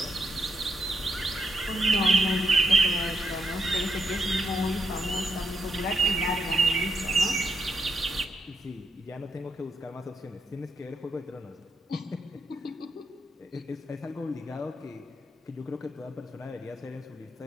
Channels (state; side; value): normal; both; correlation 0.81